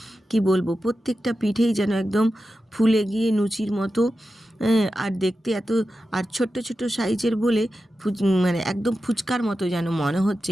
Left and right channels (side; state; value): both; normal; correlation 0.92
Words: কি বলবো, প্রত্যেকটা পিঠেই যেন একদম ফুলে গিয়ে লুচির মতো, আর দেখতে এত, আর ছোট্ট ছোট্ট সাইজের বলে মানে একদম ফুচকার মতো যেন মনে হচ্ছে